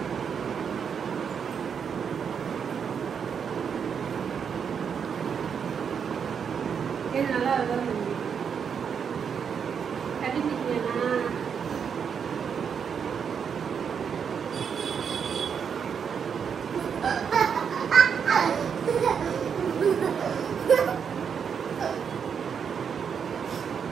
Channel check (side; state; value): left; quieter; 7.0 dB